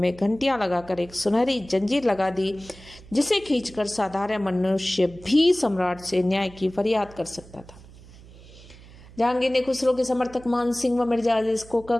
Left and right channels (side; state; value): right; noise; hum, 20 dB below the sound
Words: घंटियां लगाकर एक सुनहरी जंजीर लगा दी, जिसे खींचकर साधारण मनुष्य भी सम्राट से न्याय की फरियाद कर सकता था। जहांगीर ने खुसरो के समर्थक मान सिंह व मिर्जा अजीज कोका